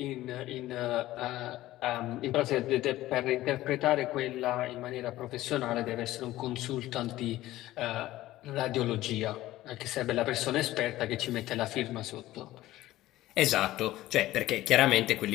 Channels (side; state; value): right; quieter; 15.8 dB